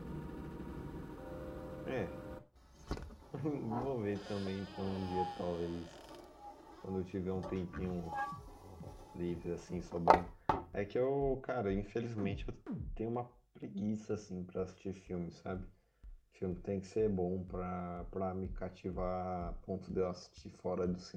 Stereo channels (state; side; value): identical; both; correlation 1.00